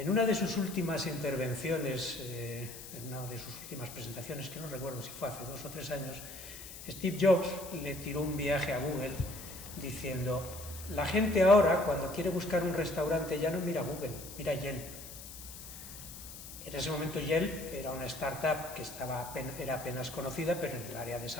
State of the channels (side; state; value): left; noise; hiss, 13 dB below the sound